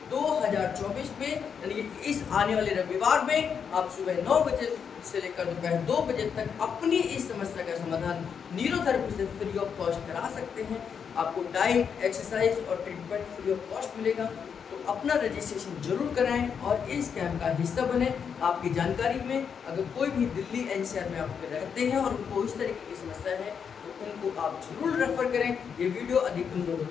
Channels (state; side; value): quieter; right; 6.9 dB